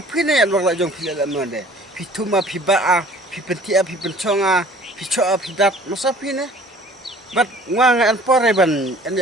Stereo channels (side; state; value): both; normal; correlation 0.50